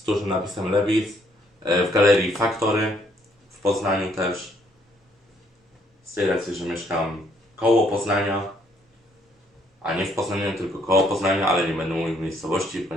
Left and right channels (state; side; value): normal; both; correlation 0.68